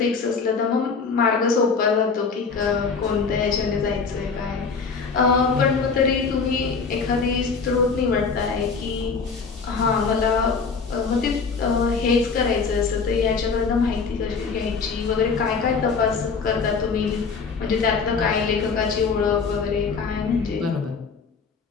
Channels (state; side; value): quieter; right; 5.1 dB